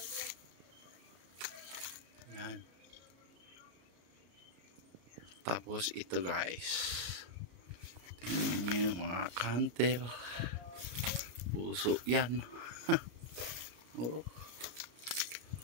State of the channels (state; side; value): late; left; 33 ms